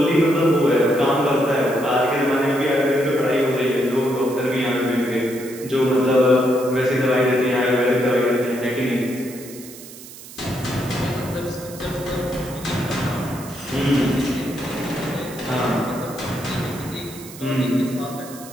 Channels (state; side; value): noise; right; hiss, 16 dB below the sound